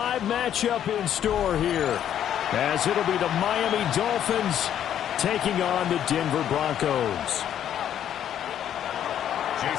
matchup in store here, as it'll be the Miami Dolphins taking on the Denver Broncos.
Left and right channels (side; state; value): right; quieter; 10.2 dB